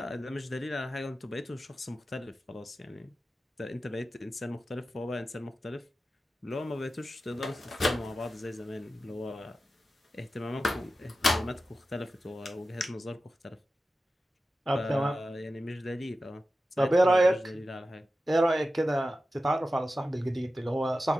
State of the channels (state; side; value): normal; both; correlation 0.93